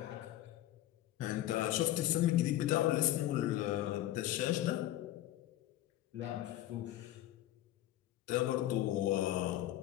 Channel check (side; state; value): right; quieter; 14.0 dB